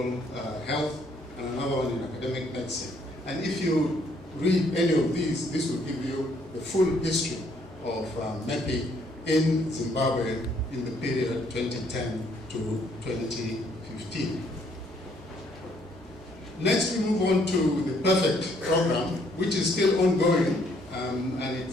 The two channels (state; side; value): normal; both; correlation 0.67